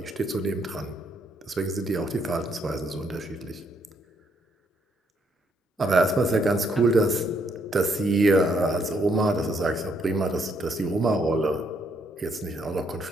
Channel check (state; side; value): normal; both; correlation 0.72